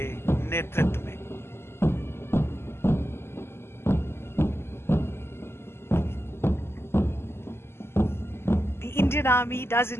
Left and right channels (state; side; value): late; right; 0.12 ms